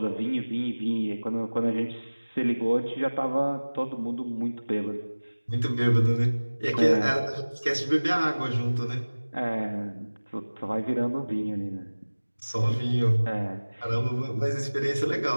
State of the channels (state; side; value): inverted; both; correlation -1.00